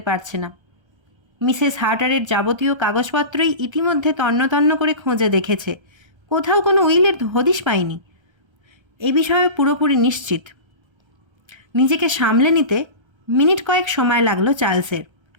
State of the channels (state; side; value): late; left; 1.3 ms